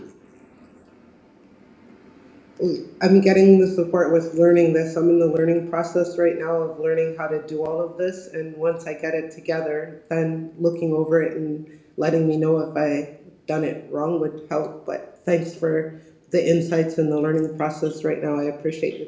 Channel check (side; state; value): both; identical; correlation 1.00